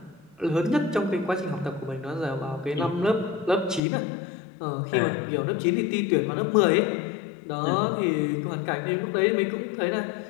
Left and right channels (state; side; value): drops out; right; at 3.8 s